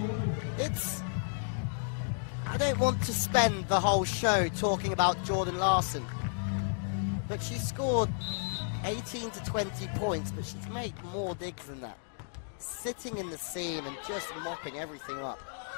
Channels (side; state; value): right; silent; digital silence